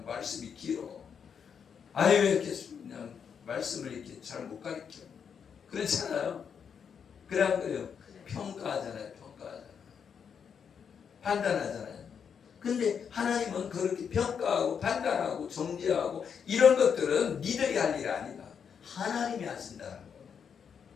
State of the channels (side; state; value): right; quieter; 7.1 dB